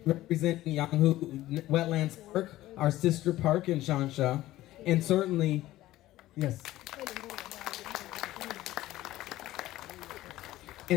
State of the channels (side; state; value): right; quieter; 15.8 dB